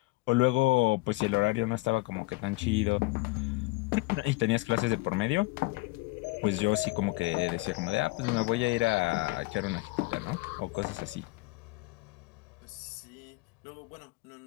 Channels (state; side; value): quieter; right; 23.3 dB